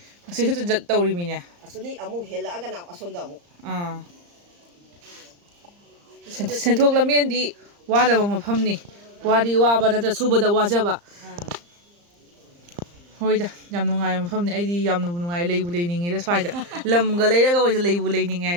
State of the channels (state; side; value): late; left; 35 ms